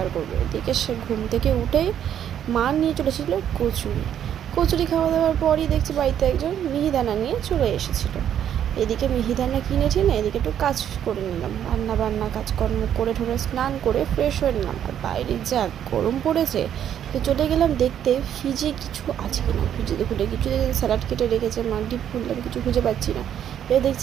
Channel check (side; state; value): left; quieter; 9.8 dB